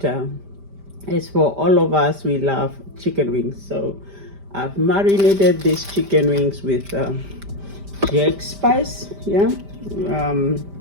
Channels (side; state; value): left; late; 5.0 ms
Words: as for all of us, we love chicken wings. So I've marinated these chicken wings with jack spice, yeah,